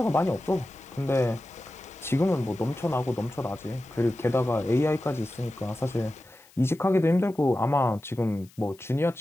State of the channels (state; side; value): noise; left; hiss, 27 dB below the sound